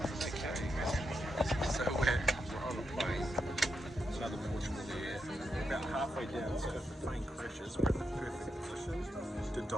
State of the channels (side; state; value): both; normal; correlation 0.84